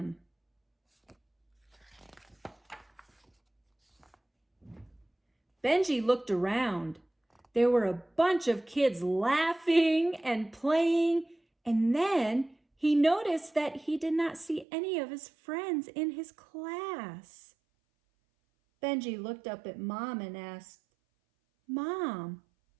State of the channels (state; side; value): drops out; left; at 14.7 s